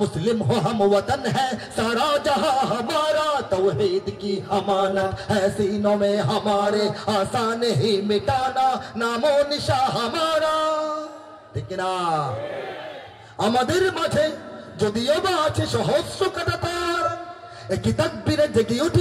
मुस्लिम हो हम वतन है सारा जहां हमारा। तौहीद की अमानत है सीनों में हमारे, आसान ही मिटाना नामो निशा हमारा। ठीक ना? আমাদের মাঝে যদিও বা আছে সহস্র কাঁটাতার, একই তাকবীরে জেগে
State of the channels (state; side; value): identical; both; correlation 1.00